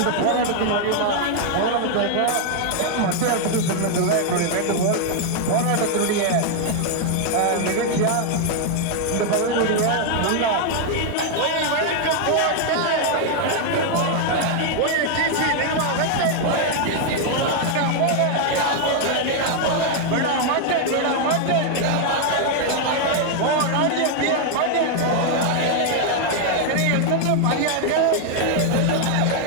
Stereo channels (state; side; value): different; both; correlation 0.00